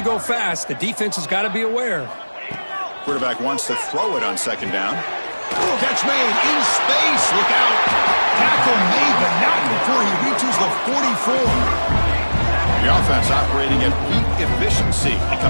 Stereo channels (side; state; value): both; inverted; correlation -1.00